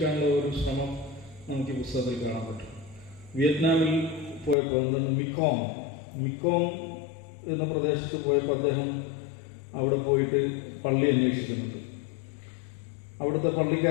ഒരു ശ്രമം നമുക്ക് ഈ പുസ്തകത്തിൽ കാണാൻ പറ്റും. വിയറ്റ്നാമിൽ പോയപ്പോൾ മിക്കോം എന്ന പ്രദേശത്ത് പോയപ്പോൾ അദ്ദേഹം അവിടെ പോയിട്ട് പള്ളി അന്വേഷിക്കുന്നുണ്ട്. അവിടുത്തെ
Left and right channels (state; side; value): drops out; right; at 4.5 s